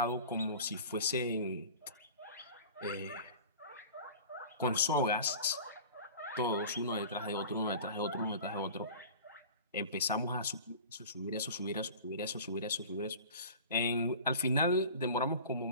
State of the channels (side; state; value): both; inverted; correlation -0.39